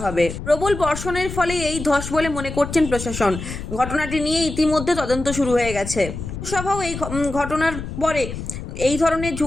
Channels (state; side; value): noise; left; rumble, 8 dB below the sound